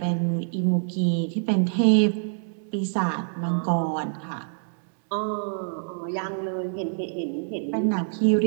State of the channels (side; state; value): left; silent; digital silence